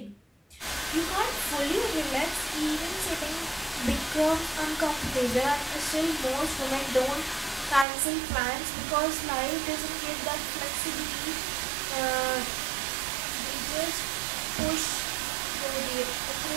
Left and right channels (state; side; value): drops out; left; at 7.9 s